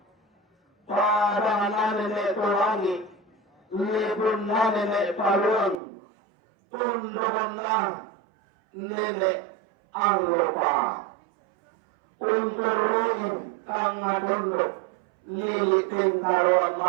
pada nanene tulangi, libun nanene paluang, tundungan na nene ang lupa. Unturuin kang tunduk, liliting karuan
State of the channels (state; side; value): drops out; left; at 5.8 s